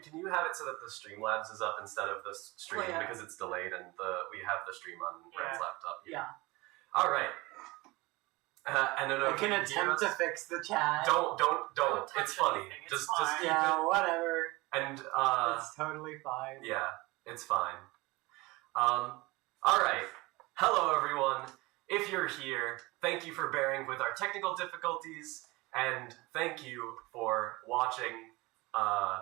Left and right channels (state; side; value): quieter; left; 22.5 dB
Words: can you have it so that the Streamlabs is up instead of the stream because it's delayed and we have the stream on Red's laptop here. Yeah. All right. And then I can attempt to fix the chat. Don't. Don't It's touch funny. anything. Just keep yeah, whatever. And it's totally fine. yeah, it's fine. All right. Hello, everyone. If you're here, thank you for bearing with our technical difficulties, and thank you for watching